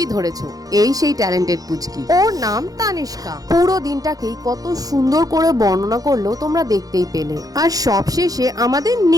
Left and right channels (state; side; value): late; left; 0.18 ms